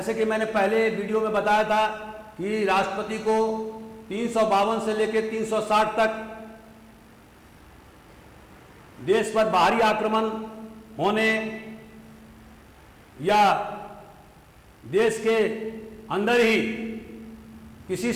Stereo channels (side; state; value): both; identical; correlation 1.00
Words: कि मैंने पहले वीडियो में बताया था कि राष्ट्रपति को 352 से लेकर 360 तक देश पर बाहरी आक्रमण होने या देश के अंदर ही किसी